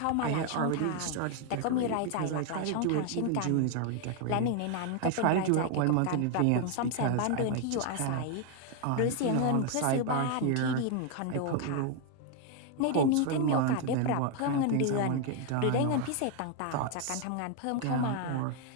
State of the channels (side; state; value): both; different; correlation 0.00